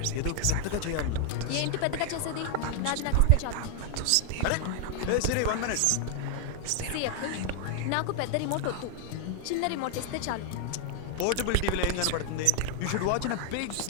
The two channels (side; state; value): both; different; correlation 0.00